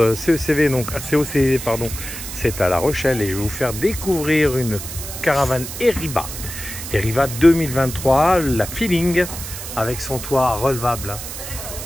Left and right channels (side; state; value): right; noise; hiss, 9 dB below the sound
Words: CECV, donc à COCV, pardon, c'est à La Rochelle et je vais vous faire découvrir une caravane Eriba. Eriba 2023, la Feeling avec son toit relevable.